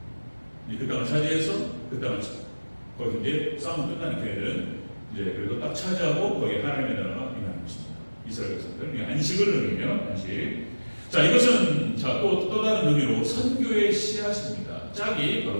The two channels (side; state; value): both; inverted; correlation -1.00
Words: 그 땅을 차지해서 그 땅을 거기 이제 싸움 끝나는 걔네들은 이제 그리고 딱 차지하고 거기에 하나님의 나라가 임하는 것입니다. 이스라엘 백성들 안식을 의미해요. 안식. 자, 이것은 또 다른 의미로 선교의 씨앗입니다. 짝이